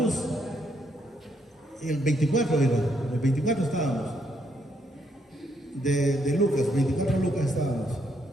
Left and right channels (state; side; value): normal; both; correlation 0.74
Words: el 24 era, el 24 estábamos, de Lucas, 24 de Lucas estábamos.